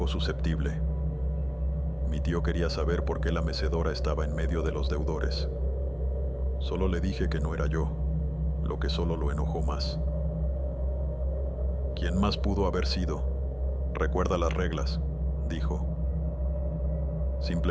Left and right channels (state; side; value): identical; both; correlation 1.00